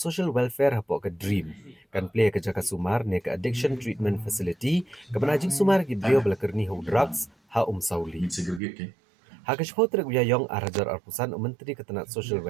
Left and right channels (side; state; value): left; drops out; at 8.6 s